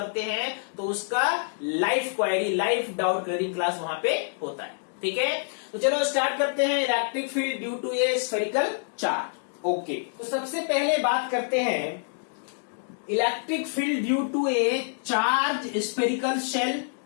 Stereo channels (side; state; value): right; silent; digital silence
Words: हैं तो उसका live query, live doubt clearing class वहां पे होता है। ठीक है, तो चलो स्टार्ट करते हैं electric field due to a spherical charge. Okay, तो सबसे पहले बात करते हैं electric field due to a charge spherical shell